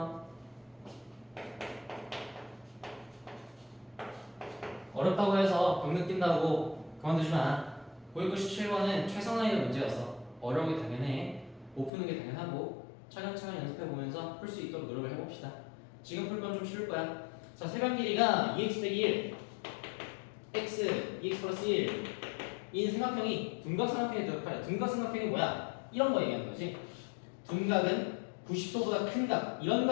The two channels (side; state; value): right; drops out; at 11.9 s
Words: 어렵다고 해서 병 느낀다고 그만두지 마. 997번은 최선 난이도 문제였어. 어려운 게 당연해. 못 푸는 게 당연하고 차근차근 연습해보면서 풀 수 있도록 노력을 해봅시다. 지금 풀 건 좀 쉬울 거야. 자, 세변 길이가 2x 빼기 1 x, 2x 플러스 1 인 삼각형이 둔각삼각형에 들어가요. 둔각삼각형이 뭐야? 이런 거 얘기하는 거지. 둔각은 90도보다 큰 각, 이런